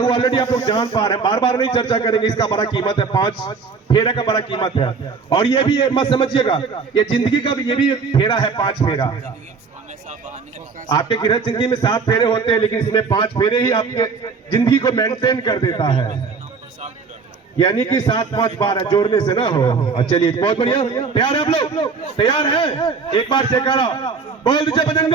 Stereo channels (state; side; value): quieter; left; 5.0 dB